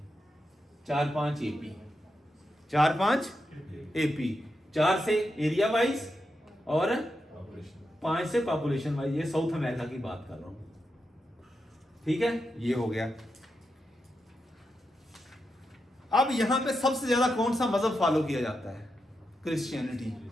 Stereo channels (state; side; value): normal; both; correlation 0.86